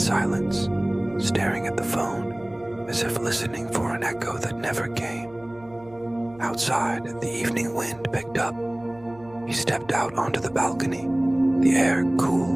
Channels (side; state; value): right; noise; hum, 26 dB below the sound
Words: staring at the phone, as if listening for an echo that never came. Outside, the evening wind picked up. He stepped out onto the balcony, the air